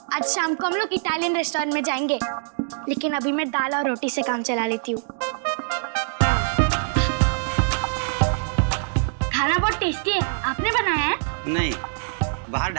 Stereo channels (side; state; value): left; silent; digital silence